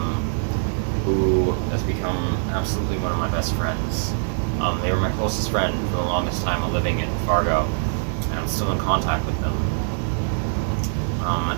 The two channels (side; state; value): left; silent; 63 dB below the other